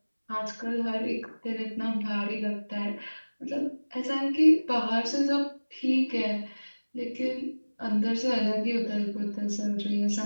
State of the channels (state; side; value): inverted; both; correlation -1.00